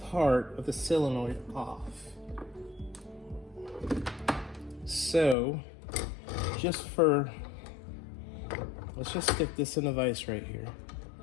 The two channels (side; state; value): right; drops out; at 5.4 s